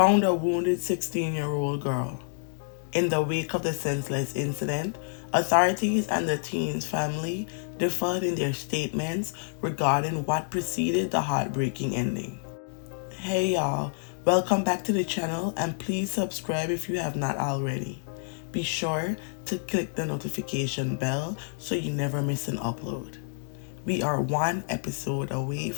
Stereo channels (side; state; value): right; silent; digital silence